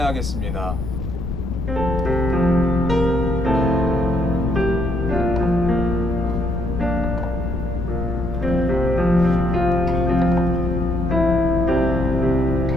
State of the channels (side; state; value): left; noise; rumble, 4 dB below the sound